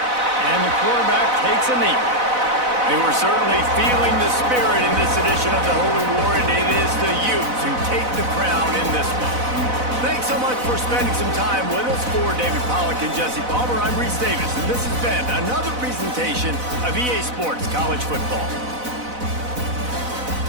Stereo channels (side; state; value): left; late; 4.0 ms